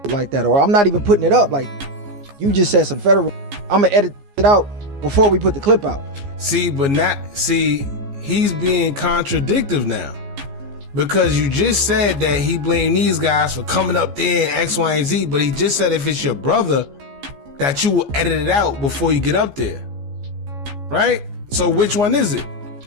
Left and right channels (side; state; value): left; late; 14 ms